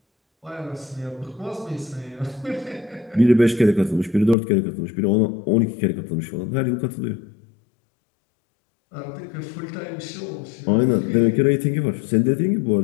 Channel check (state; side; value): drops out; right; at 4.4 s